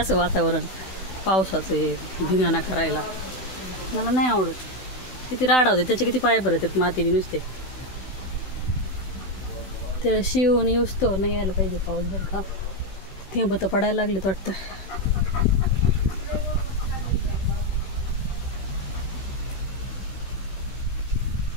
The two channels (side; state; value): right; late; 16 ms